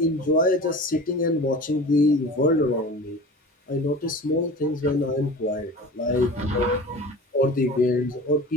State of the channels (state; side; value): normal; both; correlation 0.37